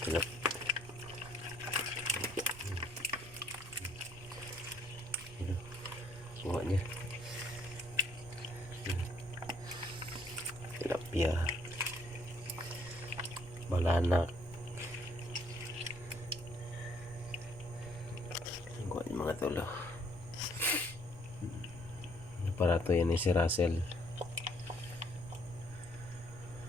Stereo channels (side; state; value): right; noise; rumble, 17 dB below the sound